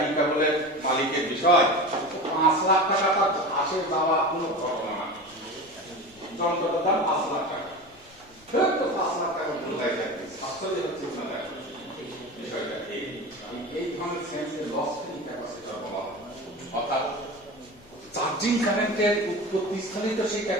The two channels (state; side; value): noise; left; rumble, 28 dB below the sound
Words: কেবলের মালিকের বিষয়, 5 লাখ টাকা তার আসে যাওয়া কোনো ঘটনা না। যন্ত্রটার দাম 5 লাখ টাকা, তো 5 লাখ টাকা বোঝাই যাবে। আসলে হচ্ছে না বিষয়টা এই ধরনের সেন্সে লস ফ্রি ক্যাপাসিটর বলা হয়। অর্থাৎ চার্জিং কারেন্টের উৎপত্তি স্থলেই তো সেই